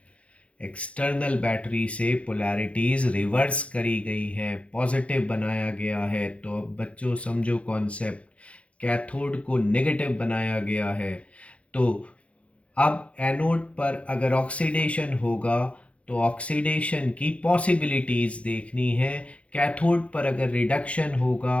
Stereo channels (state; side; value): late; right; 0.062 ms